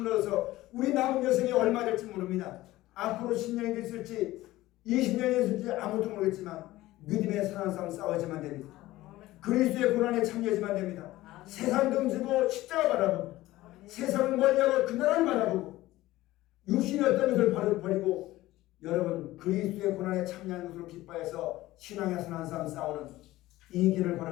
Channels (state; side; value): quieter; right; 16.9 dB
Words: 얻어서 우리 남은 여생이 얼마 될지 모릅니다. 앞으로 10년이 됐을지 20년이 됐을지 아무도 모르겠지만 믿음의 사랑 싸움 싸워야지만 됩니다. 그리스도의 고난에 참여하지만 됩니다. 세상 등지고 십자가 바라보고 세상을 멀리하고 그 나라를 바라보고 육신이 어떤 것을 버리고 여러분 그리스도의 고난에 참여하는 것으로 기뻐해서 신앙의 선한 싸움 싸우는 이 길을